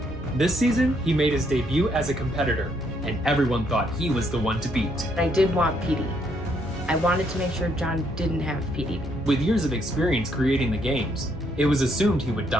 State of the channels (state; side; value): normal; both; correlation 0.72